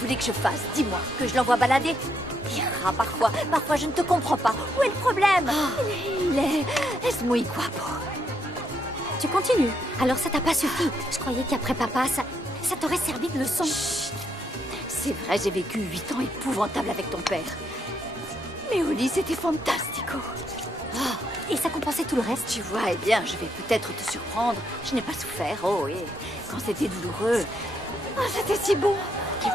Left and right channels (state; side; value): normal; both; correlation 0.76